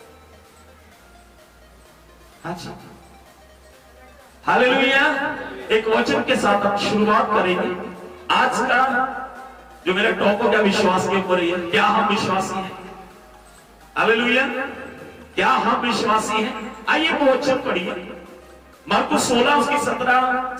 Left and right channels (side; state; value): both; identical; correlation 1.00